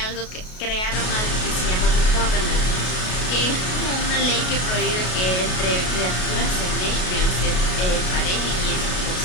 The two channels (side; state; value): right; late; 33 ms